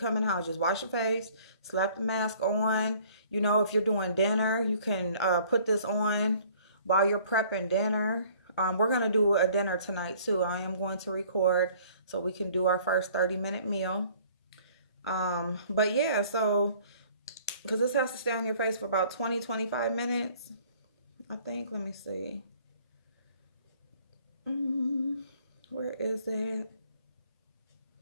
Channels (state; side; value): inverted; both; correlation -0.55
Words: in the house. Just wash your face, slap the mask on. If you're doing dinner, you can put this on while you're prepping dinner. We're going to do a dinner tonight too. I am going to record so we can do our first 30-minute meal. But yeah, so because this has to stay on your face for about 20-25 minutes. I think, let me see. Where is it?